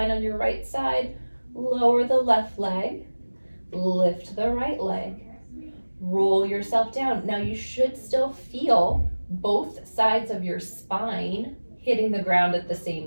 on your right side. Lower the left leg, lift the right leg. Roll yourself down. Now you should still feel both sides of your spine hitting the ground at the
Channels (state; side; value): inverted; both; correlation -1.00